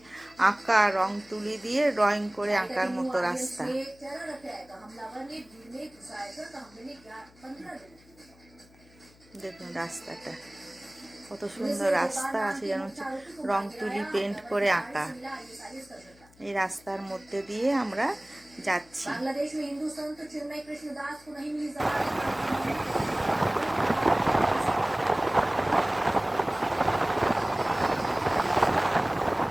আঁকা, রং তুলি দিয়ে ড্রয়িং করে আঁকার মতো রাস্তা। দেখুন রাস্তাটা কত সুন্দর রাস্তা আছে, যেন হচ্ছে রং তুলি পেন্ট করে আঁকা। এই রাস্তার মধ্যে দিয়ে আমরা যাচ্ছি।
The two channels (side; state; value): left; noise; hum, 27 dB below the sound